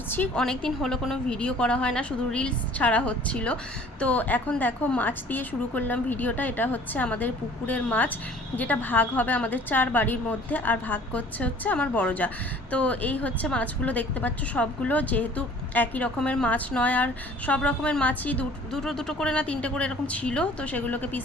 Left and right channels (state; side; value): normal; both; correlation 0.51